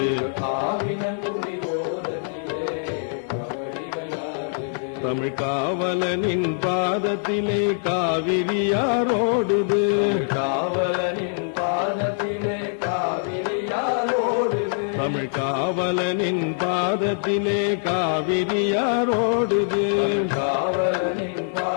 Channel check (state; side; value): silent; right; digital silence